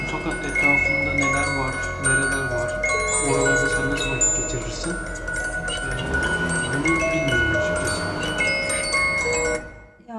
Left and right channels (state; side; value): identical; both; correlation 1.00